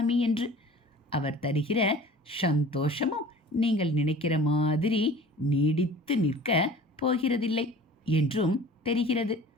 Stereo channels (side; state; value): both; normal; correlation 0.44